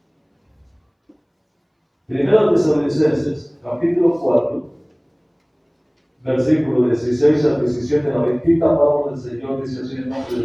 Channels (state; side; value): identical; both; correlation 1.00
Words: Primera de Tesalonicenses, capítulo 4, versículo 16 al 17, la bendita palabra del Señor dice así: en nombre